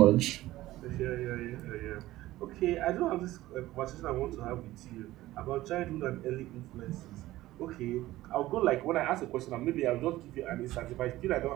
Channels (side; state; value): left; quieter; 16.4 dB